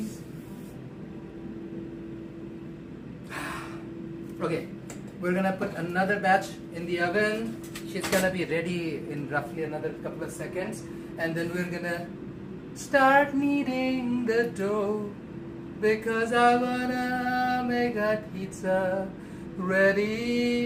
Okay, we're gonna put another batch in the oven. She's gonna be ready in roughly another couple of seconds, and then we're gonna start kneading the dough because I wanna make that pizza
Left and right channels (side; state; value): both; identical; correlation 1.00